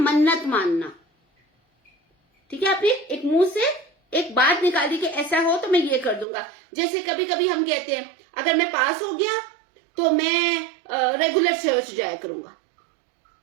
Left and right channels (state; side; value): drops out; left; at 6.2 s